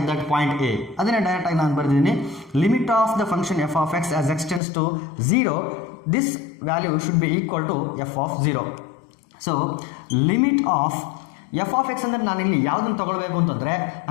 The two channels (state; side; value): drops out; right; at 4.6 s